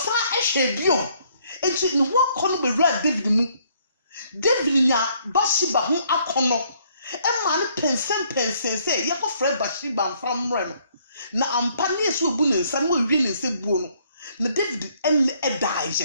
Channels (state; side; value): inverted; both; correlation -0.66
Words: ehwe bio enti ne ho akọ no bewura David mu David nya Bathsheba ho akọ Emma no pensen say ye ko frɛ Bathsheba from rem na ampa ne yesu obu ne nsam wo wie ne nsebuo no na David en edaaje